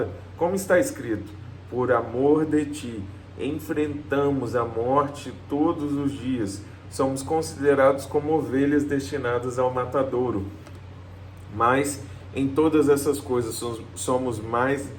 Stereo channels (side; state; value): both; identical; correlation 1.00